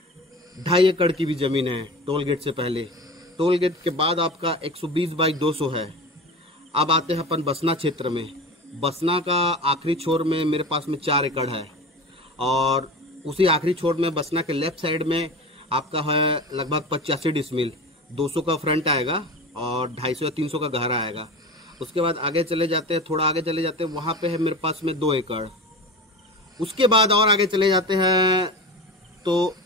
2.5 एकड़ की भी ज़मीन है टोल गेट से पहले। टोल गेट के बाद आपका 120 बाई 200 है। अब आते हैं अपन बसना क्षेत्र में। बसना का आखिरी छोर में मेरे पास में 4 एकड़ है और उसी आखिरी छोर में बसना के लेफ़्ट साइड में आपका है लगभग 85 डिसमिल। 200 का फ्रंट आएगा और 250 या 300 का गहरा आएगा। उसके बाद आगे चले जाते हैं, थोड़ा आगे चले जाते हैं, वहाँ पे है मेरे पास में 2 एकड़। उसके बाद और आगे चले जाते हैं तो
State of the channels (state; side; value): normal; both; correlation 0.31